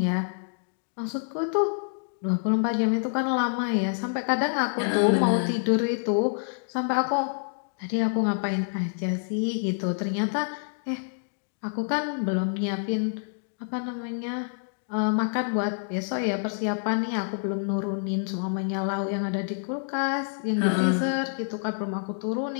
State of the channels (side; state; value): right; silent; digital silence